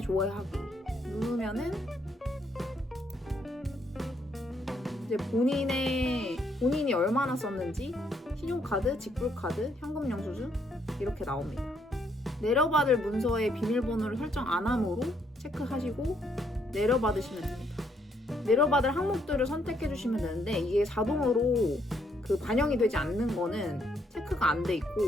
조회하기 누르면은 이제 본인이 얼마나 썼는지, 신용카드, 직불카드, 현금 영수증 이렇게 나옵니다. 내려받을 문서에 비밀번호를 설정 안 함으로 체크하시고 내려받으시면 됩니다. 내려받을 항목들을 선택해 주시면 되는데, 이게 자동으로 반영이 되지 않는 거는 체크가 안 돼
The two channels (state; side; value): normal; both; correlation 0.72